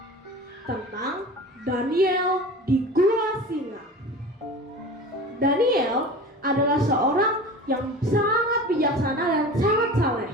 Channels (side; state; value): both; normal; correlation 0.35